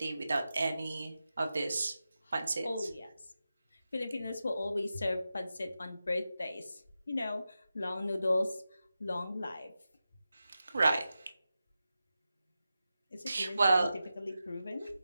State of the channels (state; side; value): inverted; both; correlation -0.91